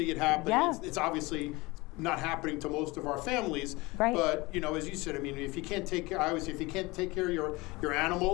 it happen. Yeah. It's obviously not happening to most of our families. Right. But as you said, if you can't take care, if you can't take care of your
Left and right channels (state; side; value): quieter; right; 23.1 dB